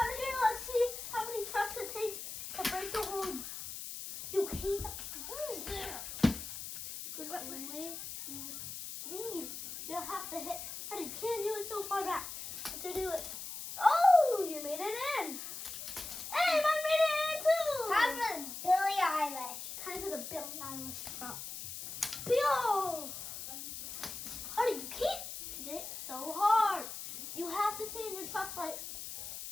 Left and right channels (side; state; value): left; noise; hiss, 8 dB below the sound